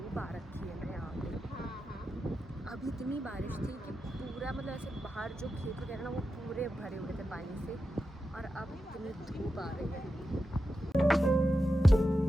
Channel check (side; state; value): both; normal; correlation 0.90